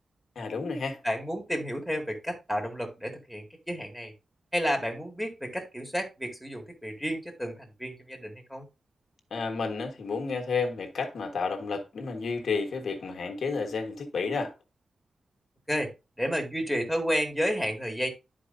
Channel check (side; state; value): both; normal; correlation 0.91